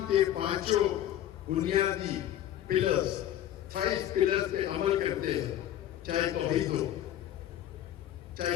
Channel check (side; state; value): right; quieter; 11.9 dB